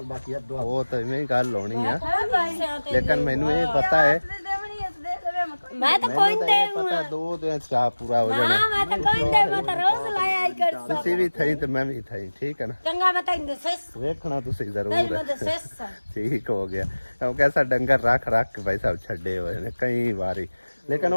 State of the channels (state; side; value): inverted; both; correlation -1.00